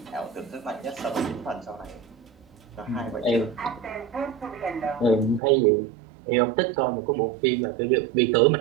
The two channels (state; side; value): drops out; left; at 5.4 s